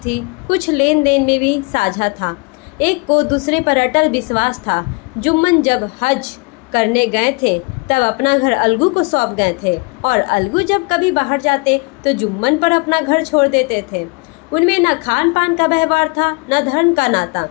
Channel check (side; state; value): right; quieter; 29.7 dB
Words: कुछ लेन देन में भी साझा था। एक को दूसरे पर अटल विश्वास था। जुम्मन जब हज करने गए थे तब अपना घर अलगू को सौंप गए थे और अलगू जब कभी बाहर जाते तो जुम्मन पर अपना घर छोड़ देते थे। उनमें न खान पान का व्यवहार था, न धर्म का नाता,